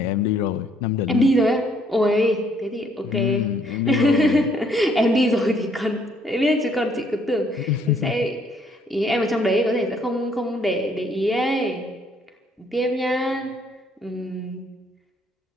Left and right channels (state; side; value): normal; both; correlation 0.66